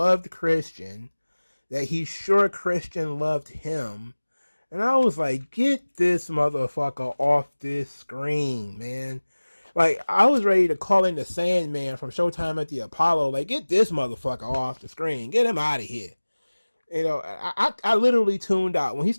Christian, that he's sure Christian loved him. And I was like, get this motherfucker off this screen, man. Like, I was ready to call in the Sandman from Showtime at the Apollo. Like, get this motherfucker off the screen. Get him out of here. You know, I literally tuned out when he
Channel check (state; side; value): inverted; both; correlation -1.00